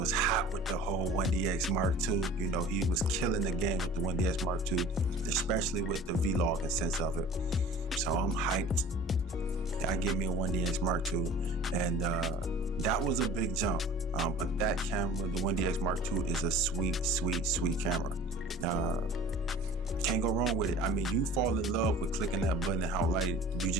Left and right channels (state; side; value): normal; both; correlation 0.44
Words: hot with the whole 1DX Mark II. You know, he was killing the game with the 1DX Mark II, especially with the vlogging sense of it. So I'm hyped. I get me a 1DX Mark II. And that was a big jump. But that camera, the 1DX Mark II, is a sweet camera. Can't go wrong with it. I mean, you fall in love with clicking that button and how light you